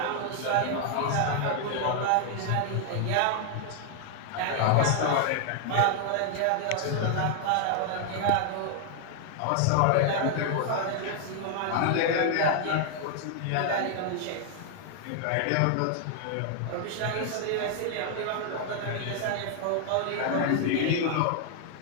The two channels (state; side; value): different; both; correlation 0.00